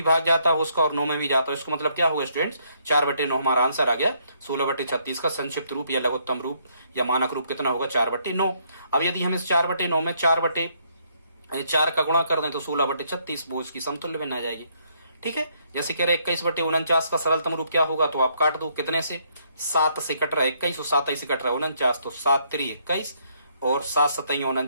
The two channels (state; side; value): inverted; both; correlation -0.71